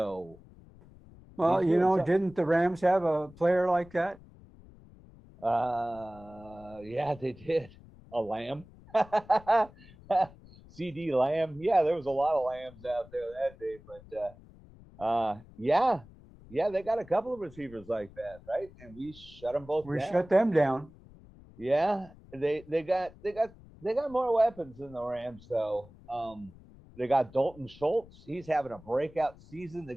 Well, he's you doing know, something. didn't the Rams have a player like that? Yeah, they did. A lamb. CD Lamb. Yeah, there was a lot of lambs out there that day, but yeah, they got a couple of receivers like that, right? And we shut them both We down. shut them down. Yeah, they got more weapons than the Rams though. They got Dalton Schultz. He's having a breakout season. The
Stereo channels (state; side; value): noise; left; rumble, 22 dB below the sound